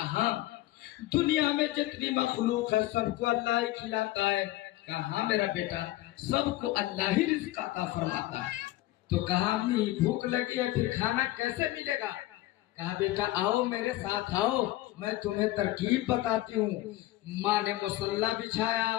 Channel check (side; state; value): right; quieter; 16.5 dB